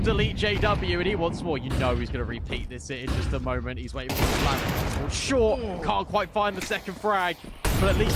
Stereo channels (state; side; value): identical; both; correlation 1.00